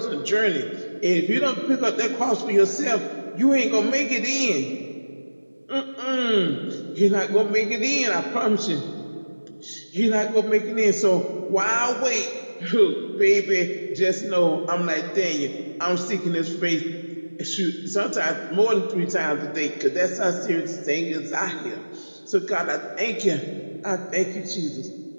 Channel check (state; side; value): inverted; both; correlation -1.00